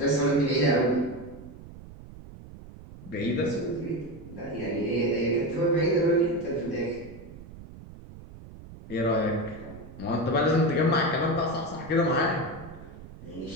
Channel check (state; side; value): noise; right; rumble, 16 dB below the sound